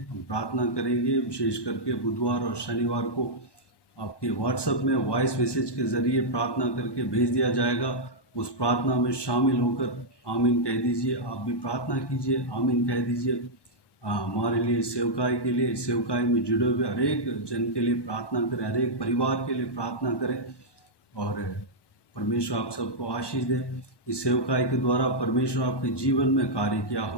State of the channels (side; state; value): right; late; 1.2 ms